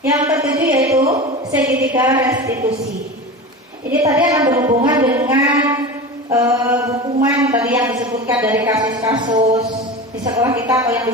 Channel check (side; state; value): both; normal; correlation 0.29